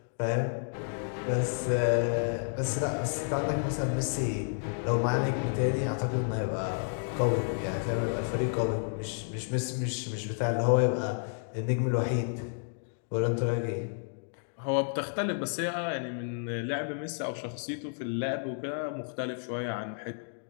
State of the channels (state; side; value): silent; right; digital silence